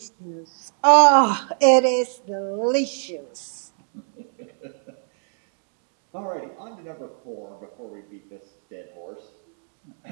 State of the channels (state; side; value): silent; left; 58 dB below the other